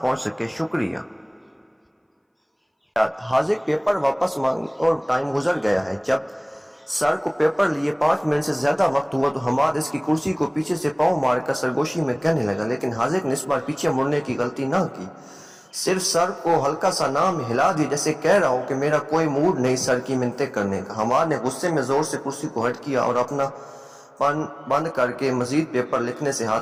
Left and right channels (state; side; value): identical; both; correlation 1.00